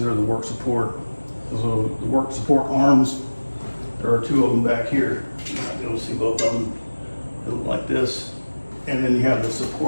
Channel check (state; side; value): inverted; both; correlation -1.00